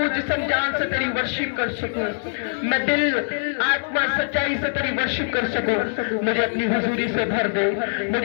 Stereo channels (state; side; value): silent; right; digital silence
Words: जिस्म जान से तेरी वर्शिप कर सकूं, मैं दिल आत्मा सच्चाई से तेरी वर्शिप कर सकूं। मुझे अपनी हुजूरी से भर दे,